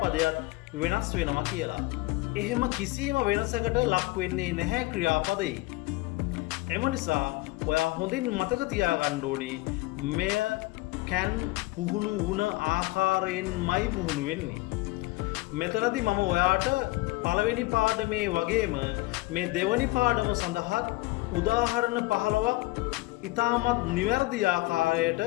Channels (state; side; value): quieter; right; 21.2 dB